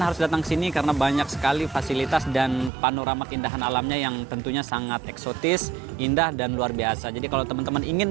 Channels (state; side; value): drops out; left; at 2.7 s